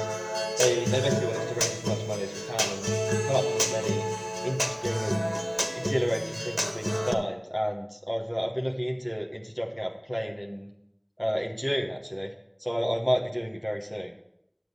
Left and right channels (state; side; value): identical; both; correlation 1.00